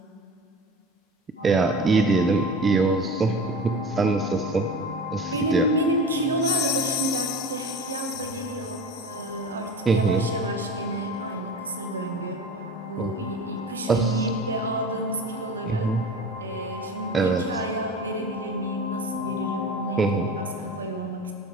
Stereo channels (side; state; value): both; normal; correlation 0.34